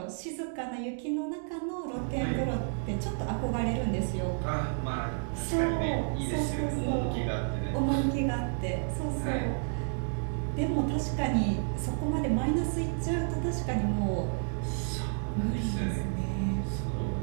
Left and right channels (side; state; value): left; silent; digital silence